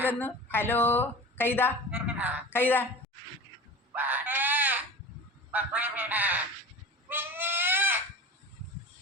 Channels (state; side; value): normal; both; correlation 0.35